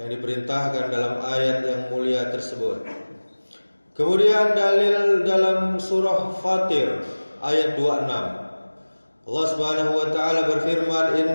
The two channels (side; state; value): both; inverted; correlation -1.00